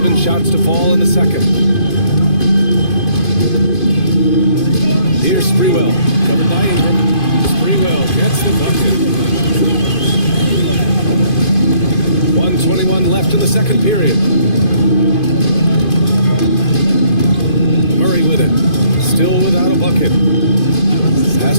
shots to fall in the second. Here's Sprewell. Covered by Ingram. Sprewell gets the bucket. 1:21 left in the second period. Murray with it. Still without a bucket. Pass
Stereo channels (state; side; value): late; right; 2.5 ms